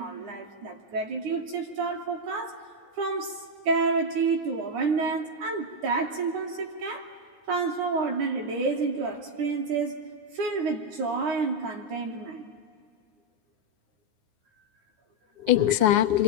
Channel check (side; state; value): left; late; 9.6 ms